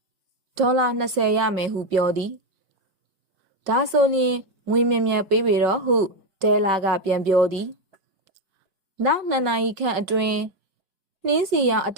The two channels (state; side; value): late; left; 5.3 ms